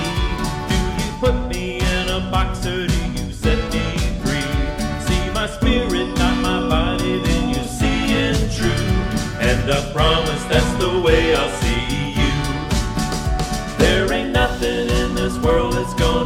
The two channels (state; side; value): identical; both; correlation 1.00